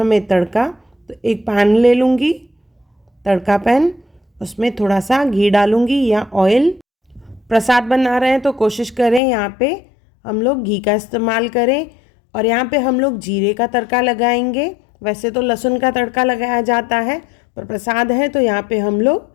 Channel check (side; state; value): right; drops out; at 9.2 s